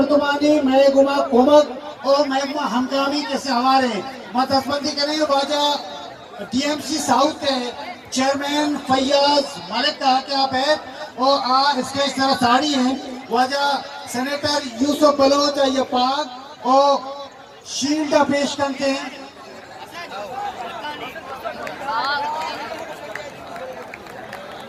मैं गुमा कोमक और मैं गुमा हमकामी कैसे हमारे मतस्बंदी करें वाजा टीएमसी साउथ के चेयरमैन फैयाज मलिक कहा कि आप है और आ स्टेज तरह साड़ी हैं वाजा सेनेटर यूसुफ बलोच ये पाक और शील्ड पेश करते हैं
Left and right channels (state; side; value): identical; both; correlation 1.00